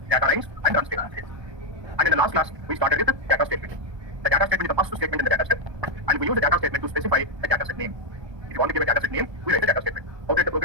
data lines, and run statements. And in the last class, we started with the data statement. The data statement is the first statement in the data set, and we use the data statement to specify a data set name. If you want to give a data set name, we write the data statement. How to write the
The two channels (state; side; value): late; left; 1.2 ms